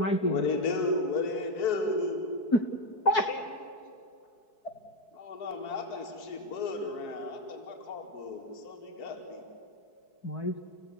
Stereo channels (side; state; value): right; late; 4.7 ms